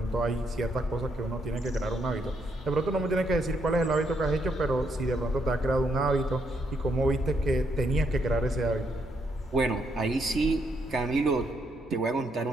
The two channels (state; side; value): normal; both; correlation 0.76